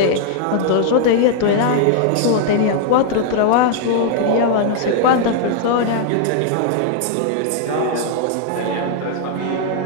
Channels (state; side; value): different; both; correlation 0.00